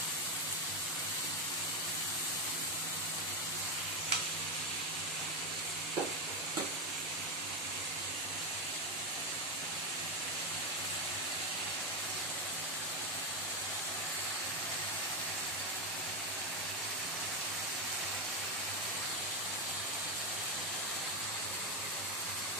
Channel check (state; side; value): normal; both; correlation 0.08